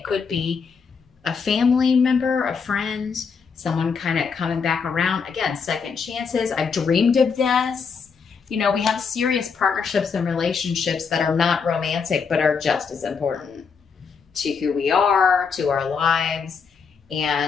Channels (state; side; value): quieter; right; 5.7 dB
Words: could be a family member, a friend, someone kind of coming back around. Again, second chances. I've dreamed of this. You know, we have serious partnerships and relationships that are not romantic, but are just as important to who we are, to our lives.